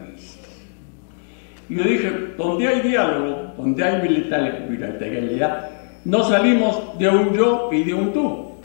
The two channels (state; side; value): silent; right; digital silence